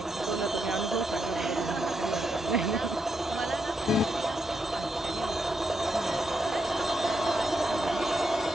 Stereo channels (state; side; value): normal; both; correlation 0.82